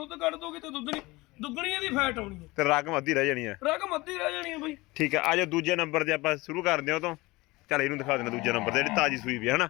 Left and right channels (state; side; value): quieter; right; 21.9 dB